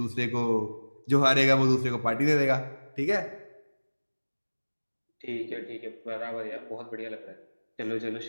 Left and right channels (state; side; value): inverted; both; correlation -1.00